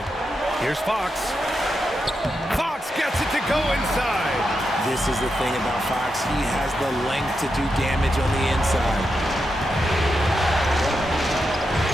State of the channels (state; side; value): normal; both; correlation 0.86